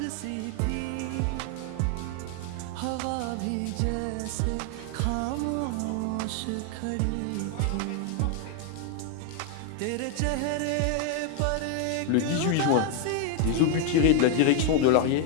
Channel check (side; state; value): both; different; correlation 0.01